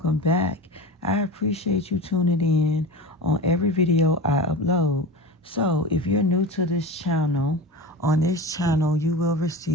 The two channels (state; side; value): normal; both; correlation 0.29